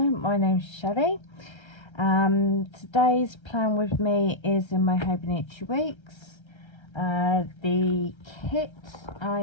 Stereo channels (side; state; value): right; late; 1.3 ms